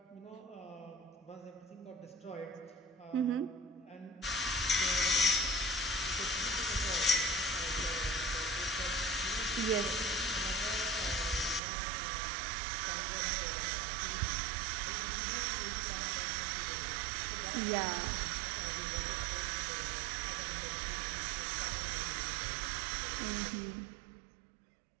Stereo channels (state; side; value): drops out; left; at 11.6 s